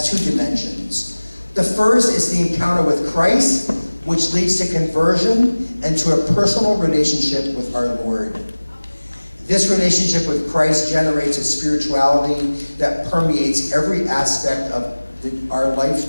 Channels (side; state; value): both; inverted; correlation -1.00